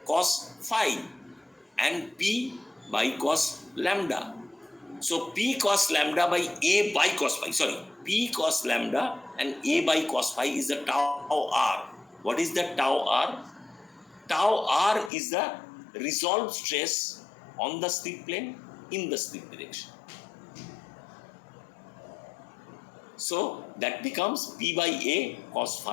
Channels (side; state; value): right; drops out; at 15.1 s